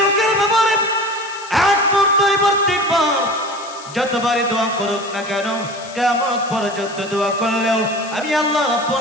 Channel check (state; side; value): noise; left; hiss, 17 dB below the sound